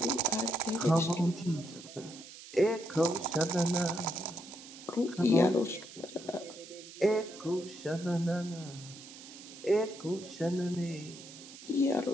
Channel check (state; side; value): noise; right; hiss, 16 dB below the sound